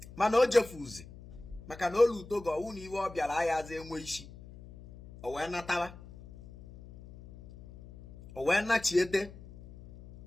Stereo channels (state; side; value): noise; left; hum, 18 dB below the sound